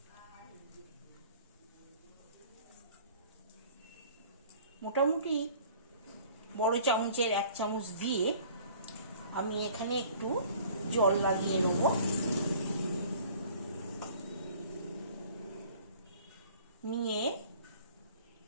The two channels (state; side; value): inverted; both; correlation -0.51